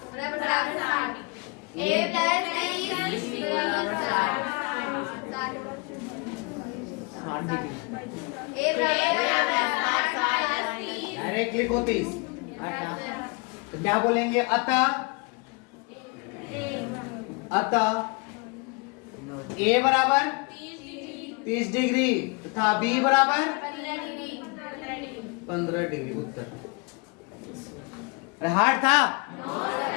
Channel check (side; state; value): right; quieter; 29.8 dB